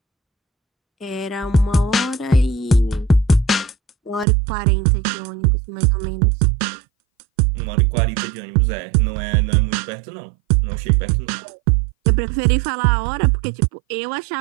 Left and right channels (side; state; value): left; drops out; at 4.2 s